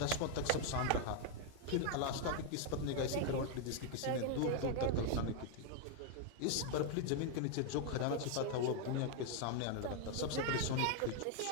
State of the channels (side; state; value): both; different; correlation 0.00